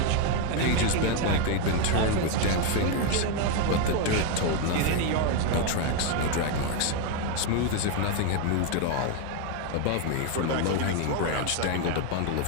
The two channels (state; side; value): different; both; correlation 0.01